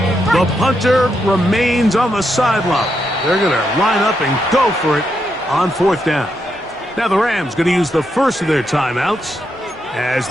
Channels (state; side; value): normal; both; correlation 0.82